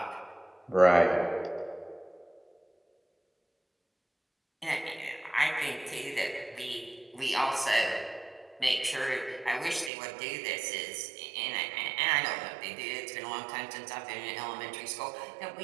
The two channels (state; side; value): drops out; left; at 9.9 s